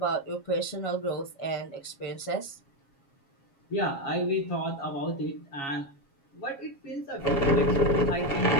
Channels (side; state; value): right; late; 7.3 ms